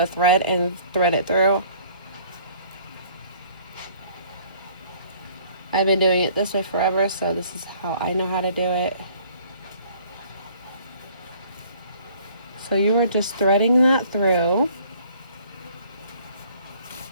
thread and thread it through. I've been doing it this way forever, so this is how I know how to do it. So you are just threading that through.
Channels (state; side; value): inverted; both; correlation -0.56